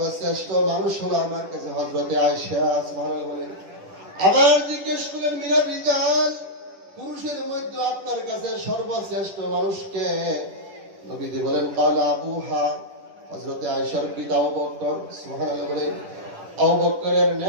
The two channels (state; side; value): late; left; 10 ms